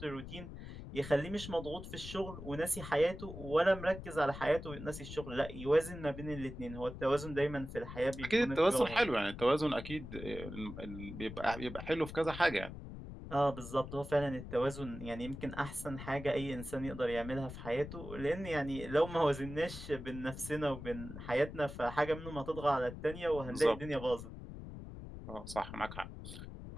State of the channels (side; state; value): left; noise; rumble, 11 dB below the sound